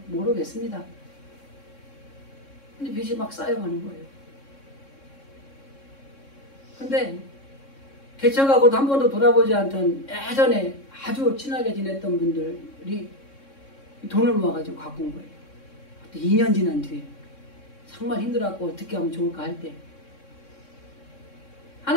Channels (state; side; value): late; right; 3.6 ms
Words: 모르겠습니다. 근데 빚이 막 쌓여가는 거예요. 근데 개척하고도 한 번도 돌아보지 않던 예전에 아주 친하게 지냈던 분들이 돈을 모아가지고 갖고 온 거예요. 2년 지난 뒤에 정말 힘들어갖고 어떻게 하면 좋을까 할 때